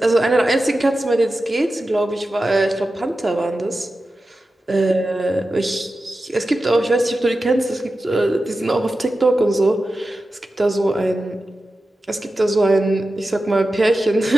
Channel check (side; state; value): both; normal; correlation 0.93